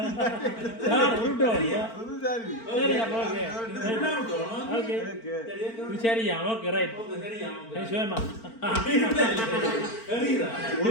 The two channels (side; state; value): right; late; 4.4 ms